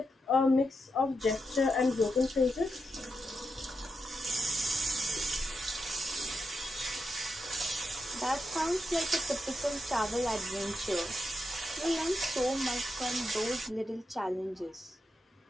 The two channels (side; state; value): both; normal; correlation 0.85